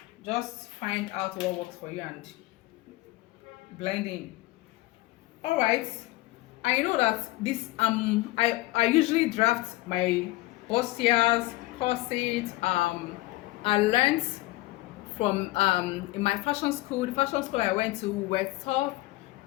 Just find out what works for you and blend in. All right, I know that this I usually draft my bustiers, corsets. I learned from in my fashion school. The fashion school I went to, were taught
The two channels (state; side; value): quieter; right; 19.6 dB